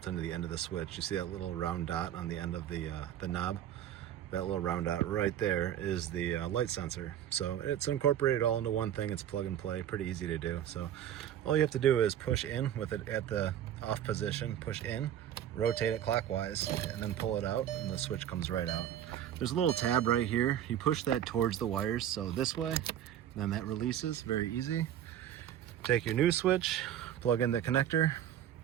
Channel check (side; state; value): left; quieter; 10.6 dB